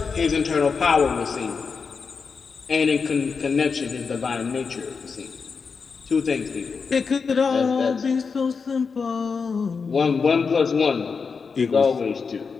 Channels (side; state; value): right; quieter; 5.3 dB